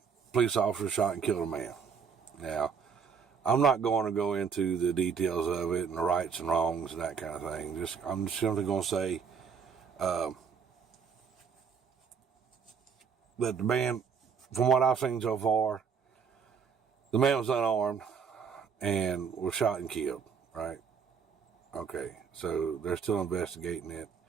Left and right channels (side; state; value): left; quieter; 6.4 dB